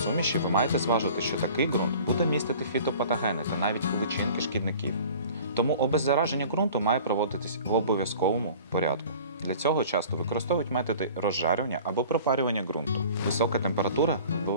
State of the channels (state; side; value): inverted; both; correlation -0.45